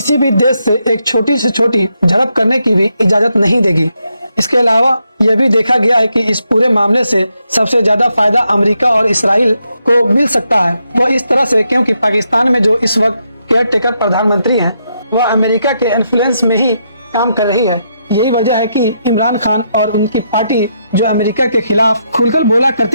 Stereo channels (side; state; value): both; inverted; correlation -0.80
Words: भी देश से एक छोटी से छोटी झड़प करने की भी इजाजत नहीं देगी। इसके अलावा यह भी देखा गया है कि इस पूरे मामले से सबसे ज्यादा फायदा अमेरिका और इसराइल को मिल सकता है। वह इस तरह से क्योंकि पाकिस्तान में जो इस वक्त केयर टेकर प्रधानमंत्री हैं, वह अमेरिका के इन्फ्लुएंस में ही काम कर रही है। यही वजह है कि इमरान खान और उनकी पार्टी जो अमेरिका के खिलाफ खुलकर बोला